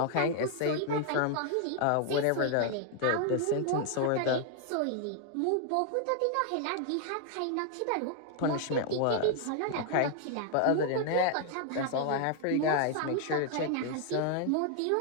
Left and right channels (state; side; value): different; both; correlation 0.00